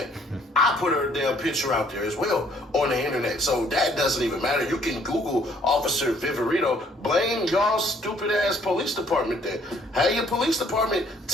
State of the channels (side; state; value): both; normal; correlation 0.62